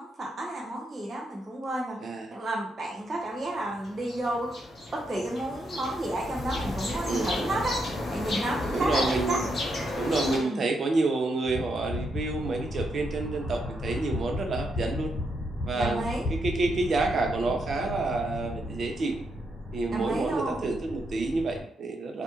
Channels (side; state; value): both; normal; correlation 0.80